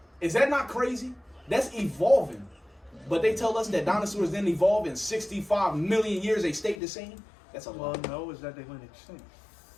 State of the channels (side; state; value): right; drops out; at 6.8 s